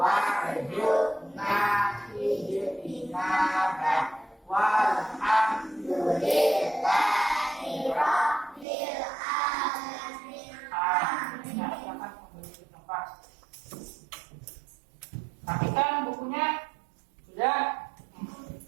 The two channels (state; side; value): drops out; left; at 8.7 s